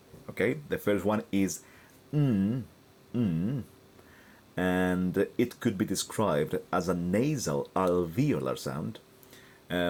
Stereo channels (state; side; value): identical; both; correlation 1.00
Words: Okay, the first one is and it could be described as a nasal alveolar sound.